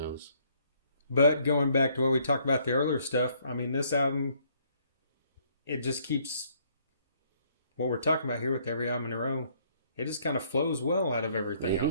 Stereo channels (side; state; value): both; inverted; correlation -0.66